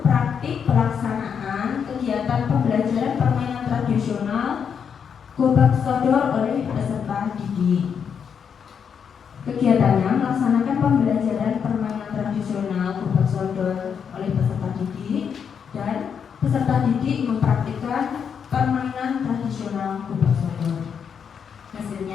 praktik pelaksanaan kegiatan pembelajaran permainan tradisional gobak sodor oleh peserta didik. Kegiatannya melaksanakan pembelajaran permainan tradisional gobak sodor oleh peserta didik, dan peserta didik mempraktikkan permainan tradisional gobak sodor.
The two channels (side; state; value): right; quieter; 7.1 dB